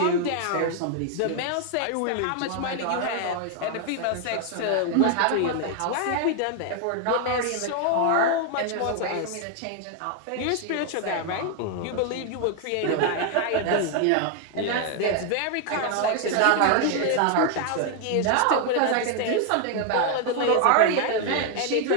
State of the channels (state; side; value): different; both; correlation 0.00